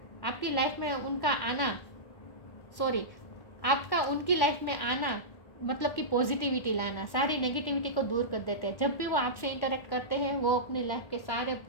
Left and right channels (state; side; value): late; right; 1.1 ms